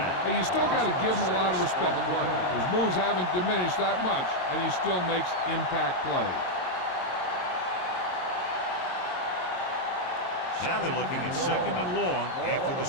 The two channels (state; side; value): late; right; 22 ms